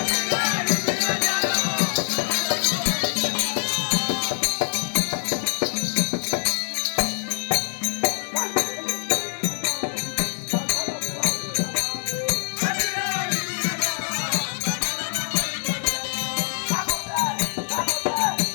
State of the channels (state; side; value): silent; right; digital silence